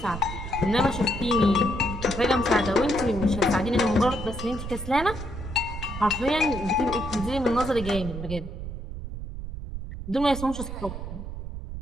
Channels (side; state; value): right; noise; rumble, 8 dB below the sound